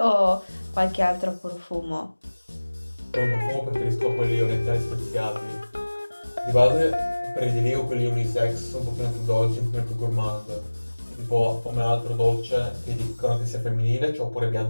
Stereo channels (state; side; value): inverted; both; correlation -1.00